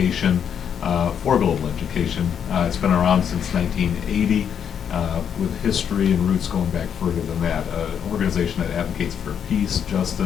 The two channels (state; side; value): quieter; right; 8.1 dB